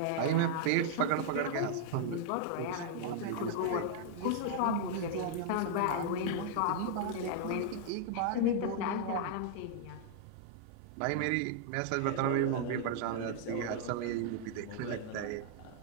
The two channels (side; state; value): both; different; correlation -0.01